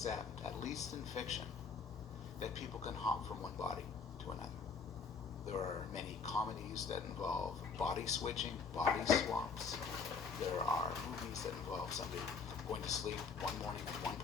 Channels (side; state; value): right; quieter; 5.3 dB